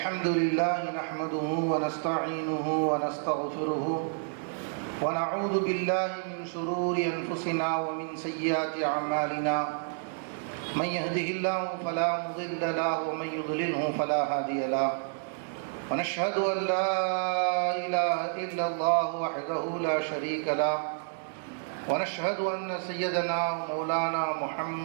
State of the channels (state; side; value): silent; left; digital silence